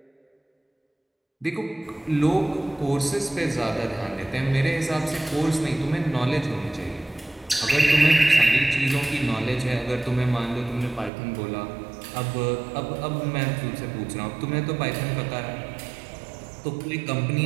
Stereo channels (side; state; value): left; drops out; at 11.1 s